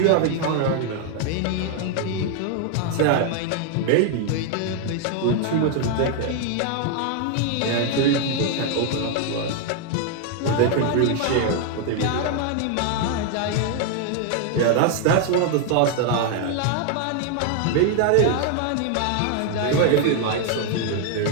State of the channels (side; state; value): both; different; correlation 0.00